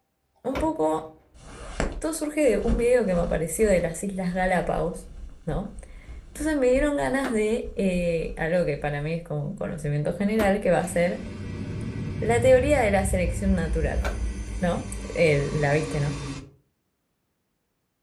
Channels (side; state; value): both; identical; correlation 1.00